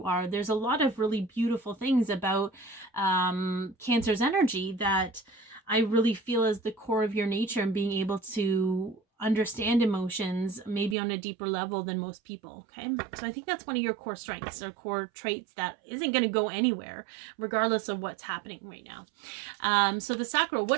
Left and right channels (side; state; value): left; drops out; at 11.0 s